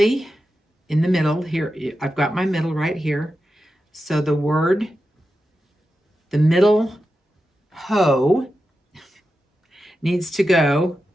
in the middle here, I've got my middle right here. So the word, the middle ho needs to go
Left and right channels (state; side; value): normal; both; correlation 0.90